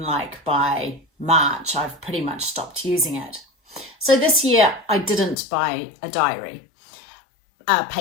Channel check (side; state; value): right; drops out; at 5.4 s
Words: like by March I've pretty much stopped using it. So this year I didn't buy a diary, a